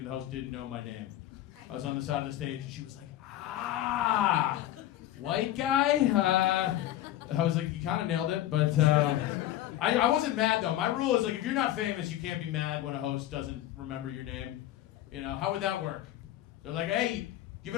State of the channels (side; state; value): right; quieter; 13.4 dB